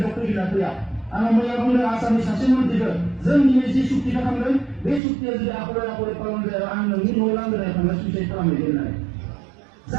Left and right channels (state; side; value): drops out; left; at 5.0 s